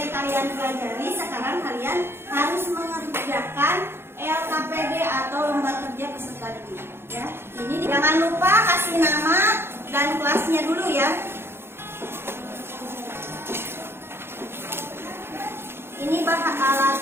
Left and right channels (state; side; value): late; left; 0.11 ms